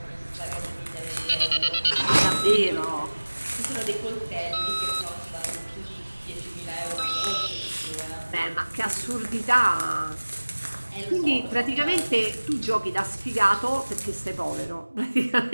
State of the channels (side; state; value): both; inverted; correlation -1.00